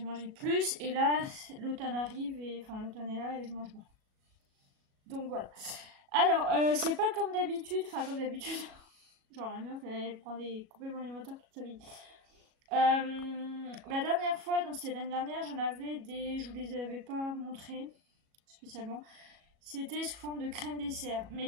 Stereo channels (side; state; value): left; late; 37 ms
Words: mangé plus et là l'automne arrive et enfin l'automne est là et je mange moins. Donc voilà. Alors c'est pas comme d'habitude, enfin comme d'habitude, genre la meuf elle prend des compléments alimentaires toute sa vie. La dernière fois, donc c'était l'année dernière, je vous les avais pas montrés spécialement. C'était sous forme de crème dessert. Mais